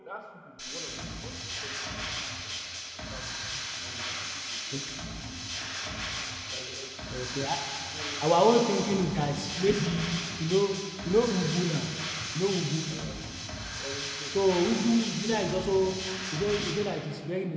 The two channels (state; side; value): identical; both; correlation 1.00